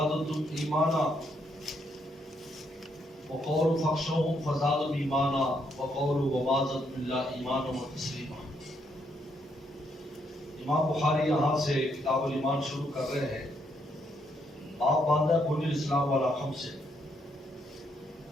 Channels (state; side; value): normal; both; correlation 0.75